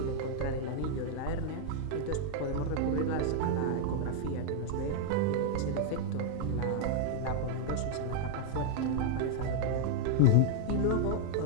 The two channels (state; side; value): different; both; correlation -0.01